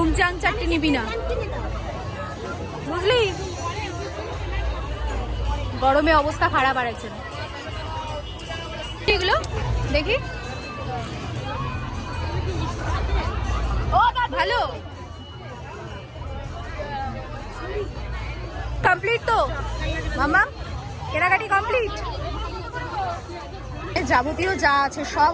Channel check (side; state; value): both; identical; correlation 1.00